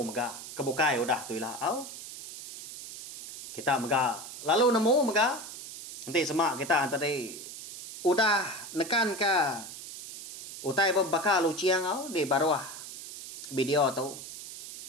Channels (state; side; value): noise; right; hiss, 12 dB below the sound